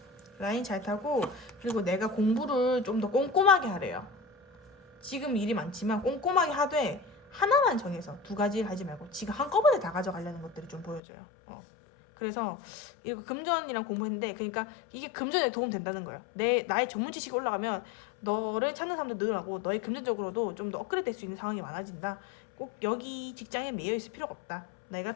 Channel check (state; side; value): drops out; right; at 11.0 s